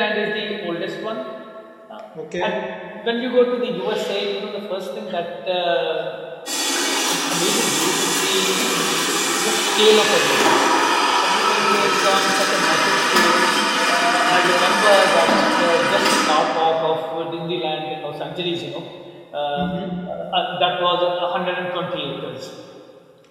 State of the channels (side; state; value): both; identical; correlation 1.00